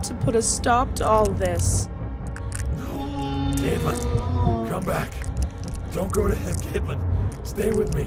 to put a stop to all this. No. Caitlin, come back. Don't go to him, Caitlin. Stay with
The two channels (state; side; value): identical; both; correlation 1.00